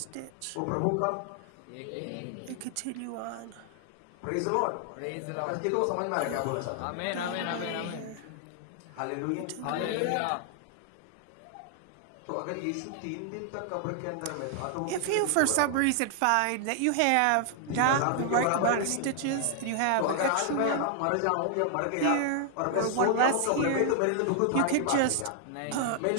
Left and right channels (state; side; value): different; both; correlation 0.00